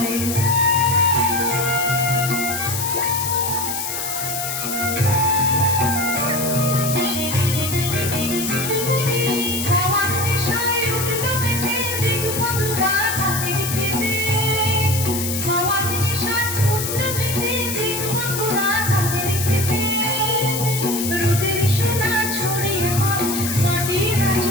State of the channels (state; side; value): noise; left; hiss, 4 dB below the sound